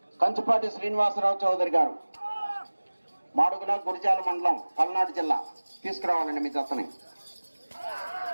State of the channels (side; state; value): both; inverted; correlation -1.00